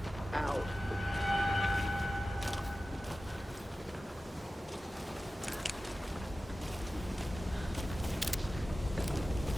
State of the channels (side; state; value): both; normal; correlation 0.95